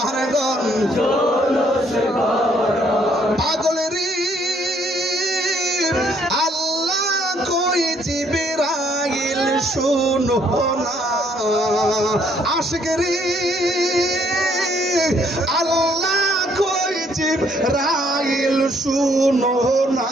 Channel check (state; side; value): normal; both; correlation 0.67